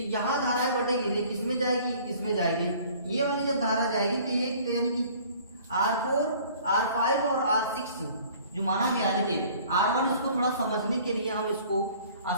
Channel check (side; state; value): both; inverted; correlation -0.52